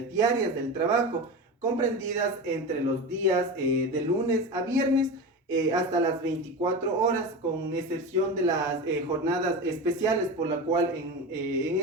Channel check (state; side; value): normal; both; correlation 0.25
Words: del trabajo, comprendidas entre los días de lunes a viernes hasta las 24 horas, con excepción de las jornadas especiales, por la cual en